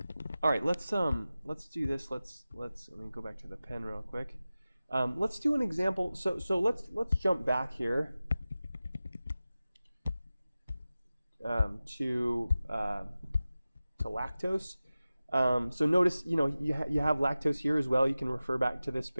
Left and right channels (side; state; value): both; inverted; correlation -0.95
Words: All right, let's do this. Let me go back to the pen real quick. Let's do an example. So let's jump back here. To lactose. So notice, you have lactose here as well. You can refer back to this